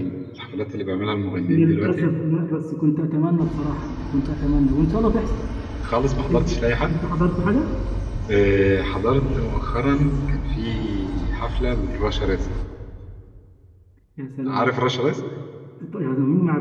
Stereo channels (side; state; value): both; identical; correlation 1.00